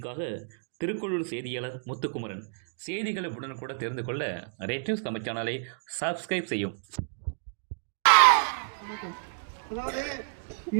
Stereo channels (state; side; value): silent; left; digital silence